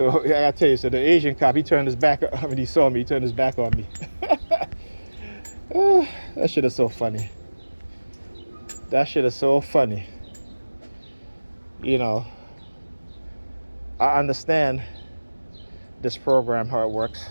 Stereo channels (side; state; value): both; inverted; correlation -1.00